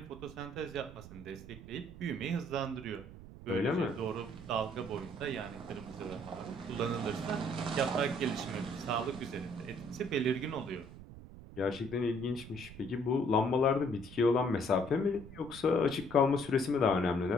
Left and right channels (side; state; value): right; noise; rumble, 15 dB below the sound